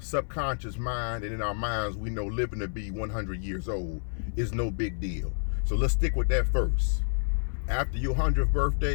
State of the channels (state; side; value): silent; right; 59 dB below the other